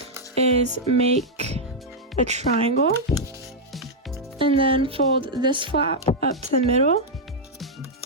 is make a triangle and then fold this flap up to the middle.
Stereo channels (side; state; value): both; normal; correlation -0.03